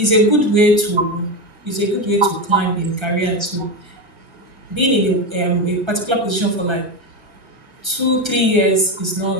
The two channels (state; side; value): late; left; 1.3 ms